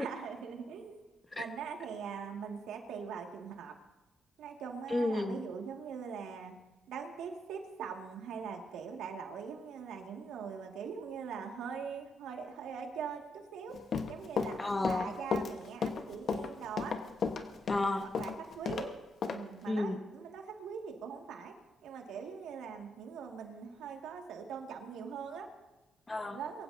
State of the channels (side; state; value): both; normal; correlation 0.77